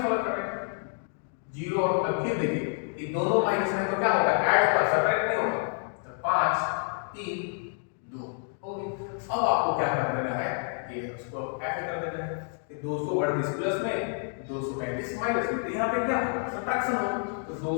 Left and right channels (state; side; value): silent; right; 55 dB below the other